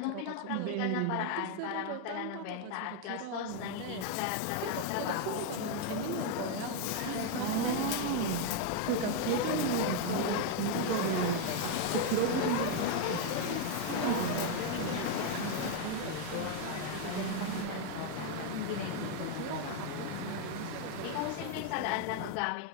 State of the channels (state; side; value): different; both; correlation 0.00